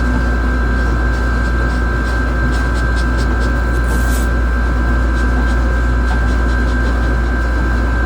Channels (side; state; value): both; identical; correlation 1.00